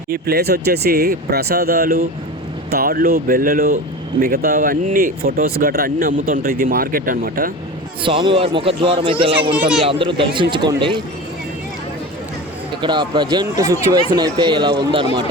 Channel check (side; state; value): both; normal; correlation 0.30